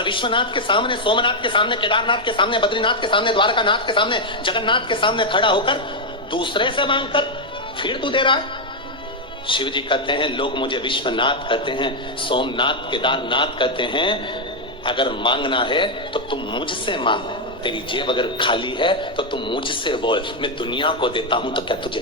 विश्वनाथ के सामने, सोमनाथ के सामने, केदारनाथ के सामने, बद्रीनाथ के सामने, द्वारकानाथ के सामने, जगन्नाथ के सामने खड़ा होकर दूसरे से मांगकर फिर तू दे रहा है। शिव जी कहते हैं लोग मुझे विश्वनाथ कहते हैं, सोमनाथ, केदारनाथ कहते हैं। अगर मांगना है तो तुम मुझसे मांग। तेरी जेब अगर खाली है तो तुम मुझसे बोल। मैं दुनिया को देता हूं तो क्या तुझे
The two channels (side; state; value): both; normal; correlation 0.00